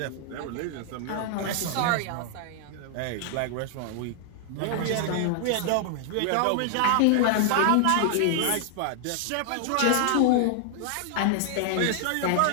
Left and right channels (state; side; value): different; both; correlation 0.00